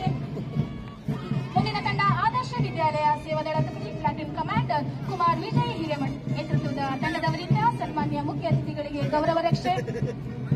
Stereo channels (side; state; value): both; identical; correlation 1.00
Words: ಮುಂದಿನ ತಂಡ ಆದರ್ಶ ವಿದ್ಯಾಲಯ ಸೇವಾದಳ ತುಕಡಿ ಪ್ಲಾಟೂನ್ ಕಮಾಂಡರ್ ಕುಮಾರ್ ವಿಜಯ್ ಹಿರೇಮಠ್ ನೇತೃತ್ವದ ತಂಡದವರಿಂದ ಸನ್ಮಾನ್ಯ ಮುಖ್ಯ ಅತಿಥಿಗಳಿಗೆ ಗೌರವ ರಕ್ಷೆ.